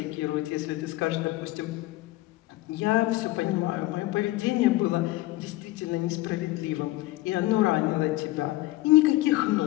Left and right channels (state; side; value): quieter; right; 18.1 dB